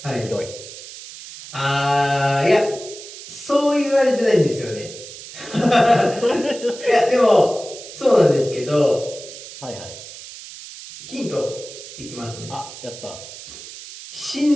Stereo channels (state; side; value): noise; right; hiss, 14 dB below the sound